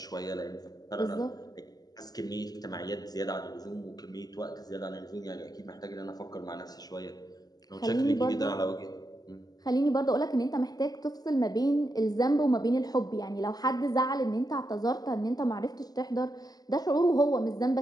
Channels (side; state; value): right; late; 0.19 ms